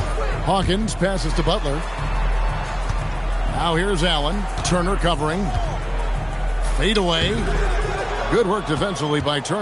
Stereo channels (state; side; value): identical; both; correlation 1.00